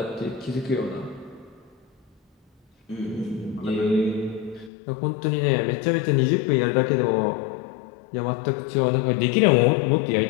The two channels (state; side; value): drops out; right; at 4.7 s